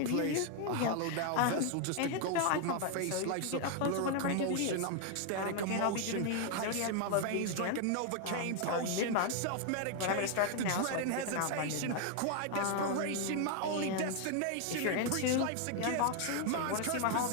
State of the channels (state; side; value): different; both; correlation 0.00